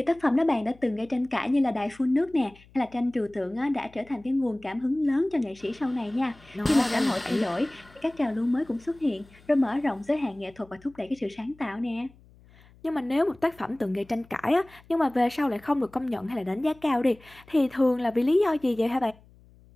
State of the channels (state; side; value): noise; left; hum, 26 dB below the sound